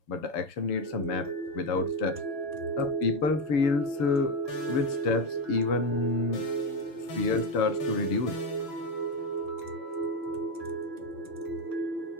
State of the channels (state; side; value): late; right; 7.0 ms